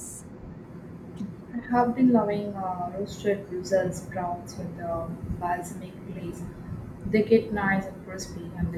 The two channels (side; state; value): both; identical; correlation 1.00